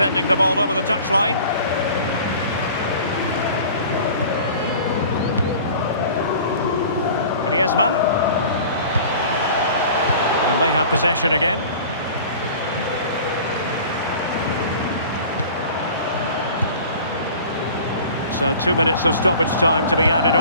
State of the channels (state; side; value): inverted; both; correlation -0.44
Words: the ball over the touchline. Griezmann. And they have possession again. So 2 minutes of stoppage time to be added